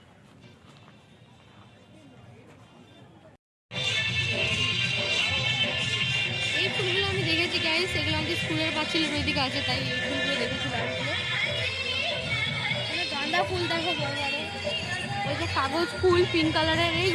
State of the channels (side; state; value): both; identical; correlation 1.00